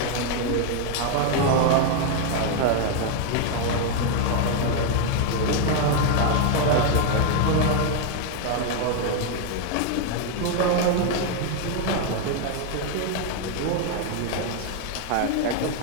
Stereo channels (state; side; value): different; both; correlation 0.01